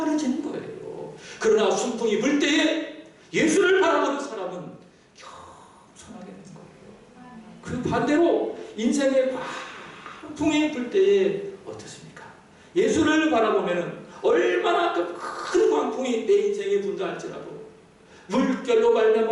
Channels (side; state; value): both; identical; correlation 1.00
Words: 거예요. 그러나 순풍이 불 때에 예수를 바라보는 사람은 겸손하게 되는 거예요. 그 반대로 인생의 광풍이 불 때에 어떻습니까? 예수를 바라보면 얼마나 큰 광풍이 내 인생에 분다 할지라도 물결로